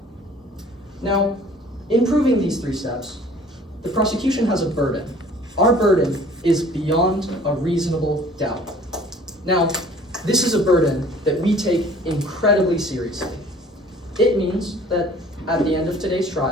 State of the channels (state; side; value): normal; both; correlation 0.50